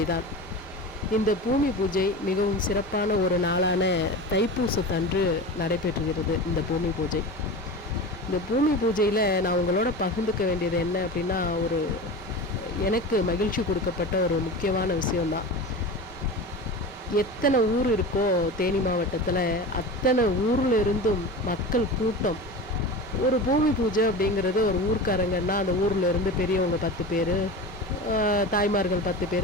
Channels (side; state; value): both; normal; correlation 0.30